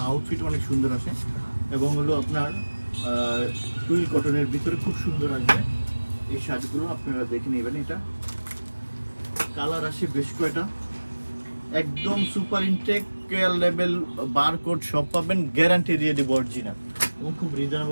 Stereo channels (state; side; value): inverted; both; correlation -1.00